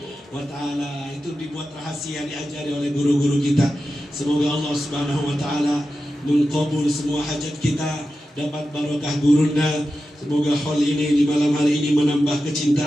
wa ta'ala. Itu dibuat rahasia, diajari oleh guru-guru kita. Semoga Allah Subhanahu wa ta'ala mengkabul semua hajat kita, dapat barokah gurunda. Semoga hal ini di malam hari ini menambah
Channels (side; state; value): both; normal; correlation 0.92